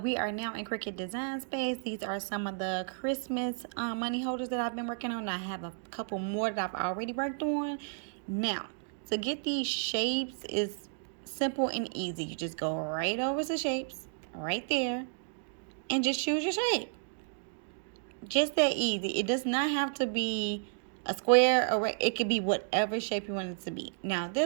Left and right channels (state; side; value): silent; left; digital silence